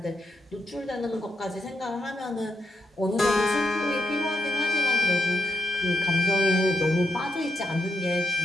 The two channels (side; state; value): both; normal; correlation 0.82